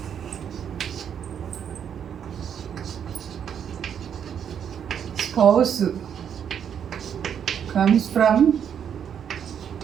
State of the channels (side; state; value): left; quieter; 8.4 dB